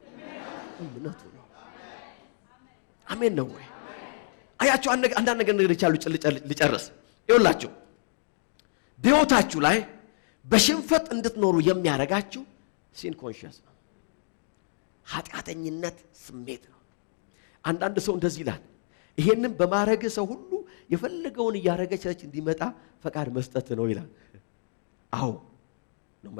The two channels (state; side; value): silent; right; digital silence